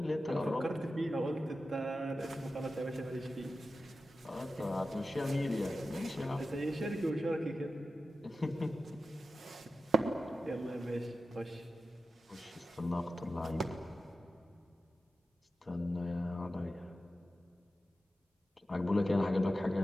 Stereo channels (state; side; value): normal; both; correlation 0.93